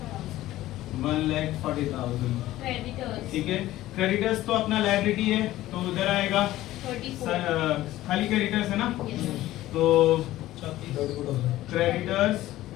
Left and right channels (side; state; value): right; quieter; 15.4 dB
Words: 1,40,000, ठीक है। क्रेडिटर्स तो अपना लायबिलिटी है तो उधर आएगा, खाली क्रेडिटर्स है ना, तो क्रेडिटर्स